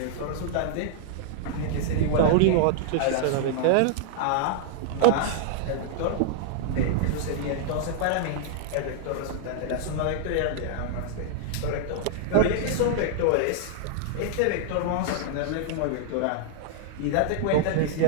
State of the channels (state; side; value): different; both; correlation -0.01